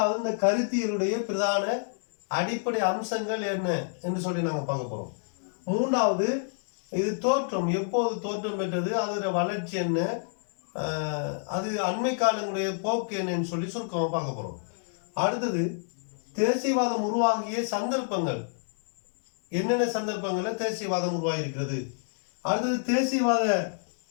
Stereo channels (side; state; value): right; silent; digital silence